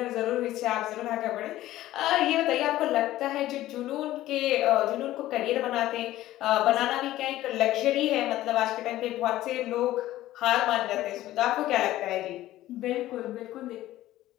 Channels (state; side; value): quieter; right; 15.0 dB